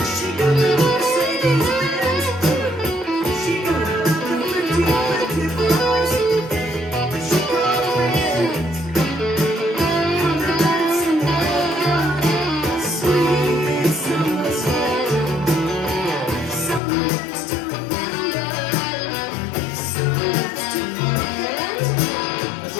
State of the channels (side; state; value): right; drops out; at 16.8 s